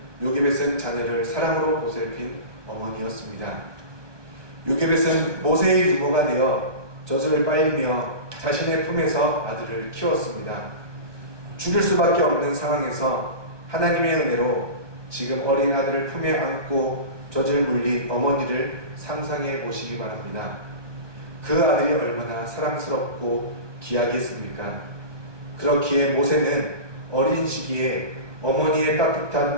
요게벳은 자녀를 사랑으로 보살핀 어머니였습니다. 요게벳은 모세의 유모가 되어 젖을 빨리며 자신의 품에서 아들을 키웠습니다. 죽일 수밖에 없는 상황에서 하나님의 은혜로 지금 어린 아들을 품에 안고 젖을 물린 어머니를 상상해 보시기 바랍니다. 그 아들이 얼마나 사랑스럽고 귀하겠습니까? 그렇기에 모세는 어린 시기에 어머니의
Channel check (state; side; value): late; left; 1.2 ms